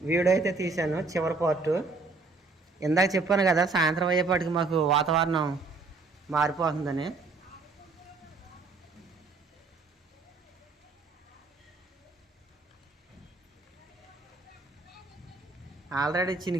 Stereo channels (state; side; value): quieter; left; 3.9 dB